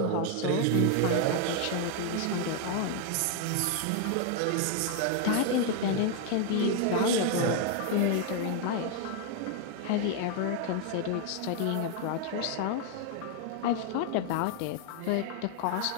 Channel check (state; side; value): different; both; correlation 0.00